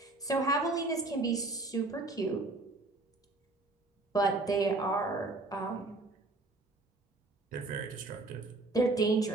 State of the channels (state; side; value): quieter; left; 3.1 dB